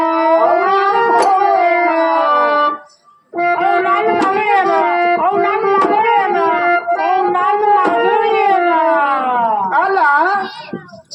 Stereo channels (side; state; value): both; identical; correlation 1.00